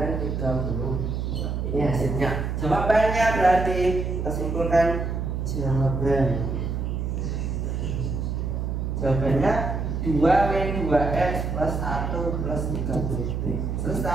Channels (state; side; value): noise; right; hum, 2 dB below the sound